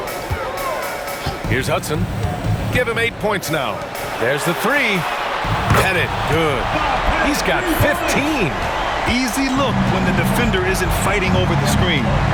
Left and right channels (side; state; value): both; identical; correlation 1.00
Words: Here's Hudson. Give him 8 points now. There's the three. Pettit, good. He's got 15. Easy look when the defender isn't fighting over the screen.